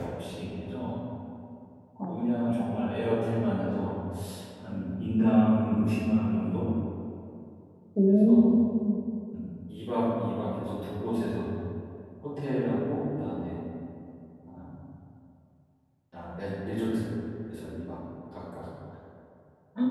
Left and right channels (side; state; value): both; identical; correlation 1.00